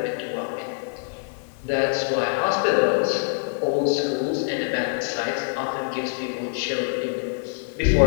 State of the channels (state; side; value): silent; right; 62 dB below the other